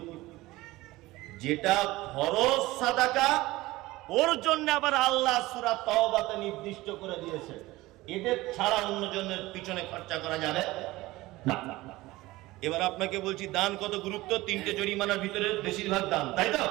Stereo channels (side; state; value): left; quieter; 19.0 dB